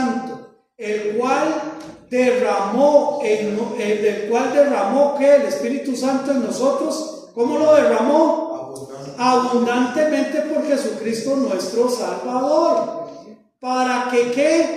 el cual derramó que el Espíritu Santo en nosotros. ¿Cómo lo derramó? Abundantemente por Jesucristo nuestro Salvador. ¿Para que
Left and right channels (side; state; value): both; identical; correlation 1.00